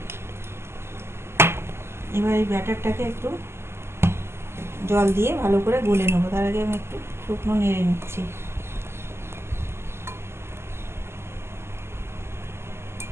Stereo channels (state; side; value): late; left; 0.12 ms